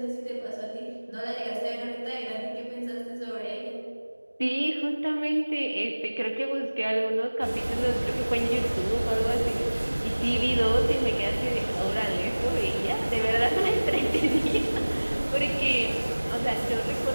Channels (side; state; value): both; inverted; correlation -1.00